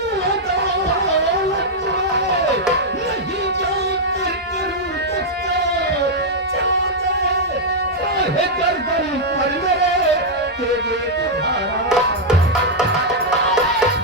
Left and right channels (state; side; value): normal; both; correlation -0.04